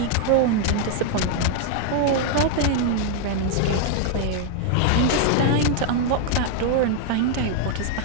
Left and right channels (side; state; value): both; different; correlation 0.00